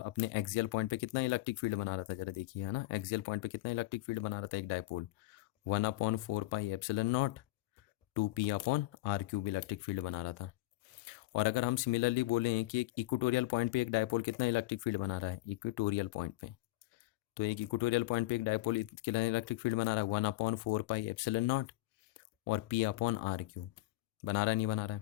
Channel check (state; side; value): quieter; right; 17.8 dB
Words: अपने एक्सियल पॉइंट पे कितना इलेक्ट्रिक फील्ड बना रहा था, जरा देखिए, है ना। एक्सियल पॉइंट पे कितना इलेक्ट्रिक फील्ड बना रहा था एक dipole, 1/4 pi epsilon nought 2p upon R cube electric field बना रहा था। और अगर हम सिमिलरली बोलें कि एक इक्वेटोरियल पॉइंट पे एक डायपोल कितना इलेक्ट्रिक फील्ड बना रहा है इक्वेटोरियल पॉइंट पे, तो एक इक्वेटोरियल पॉइंट पे एक डायपोल कितना इलेक्ट्रिक फील्ड बना रहा है 1/4 पाई एप्सिलॉन नॉट और p अपॉन आर क्यूब, बना रहा है नहीं बना रहा